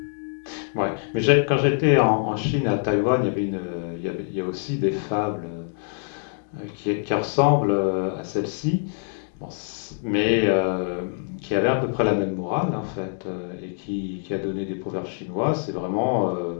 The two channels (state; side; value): silent; right; 62 dB below the other